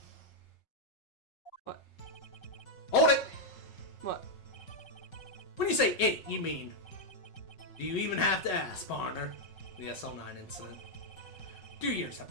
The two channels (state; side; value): late; right; 5.5 ms